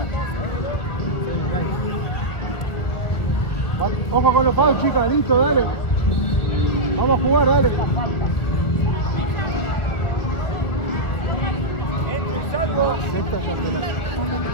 Ojo con los palos, chicas, listo, dale. Vamos a jugar, dale. Entre y salgo.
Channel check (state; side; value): late; right; 1.6 ms